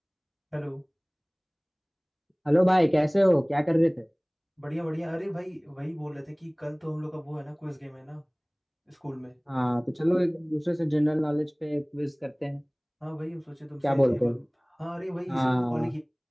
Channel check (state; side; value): identical; both; correlation 1.00